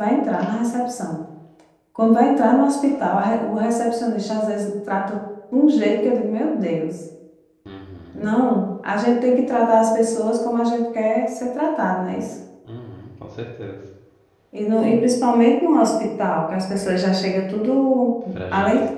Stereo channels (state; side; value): identical; both; correlation 1.00